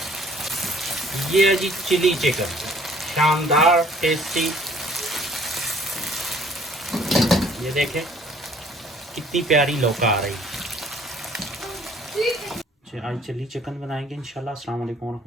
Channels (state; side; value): normal; both; correlation 0.57